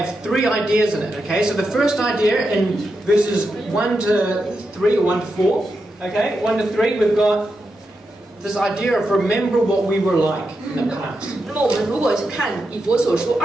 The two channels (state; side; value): normal; both; correlation 0.86